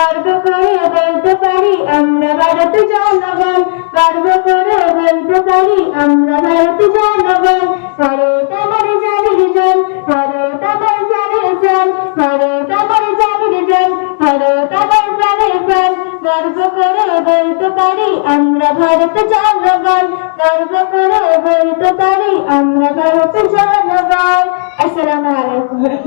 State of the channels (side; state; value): right; silent; digital silence